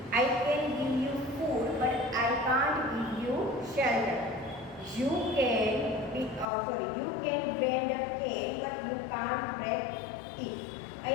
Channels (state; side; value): drops out; right; at 6.5 s